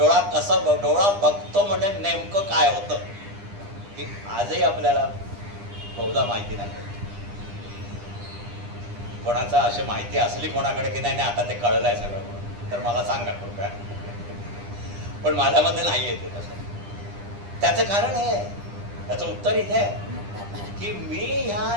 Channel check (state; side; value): late; left; 9.9 ms